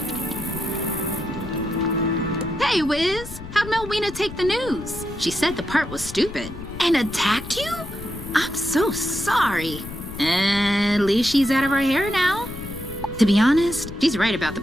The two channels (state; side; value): noise; left; rumble, 13 dB below the sound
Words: Hey, Wiz, how'd Melwina take the news? She said the part was stupid. And attacked you? I'm so sorry. At least she's out of her hair now. To be honest, she's right about the